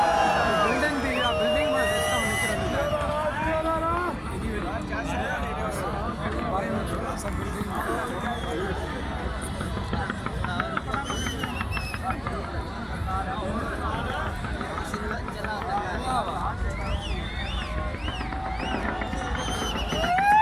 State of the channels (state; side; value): identical; both; correlation 1.00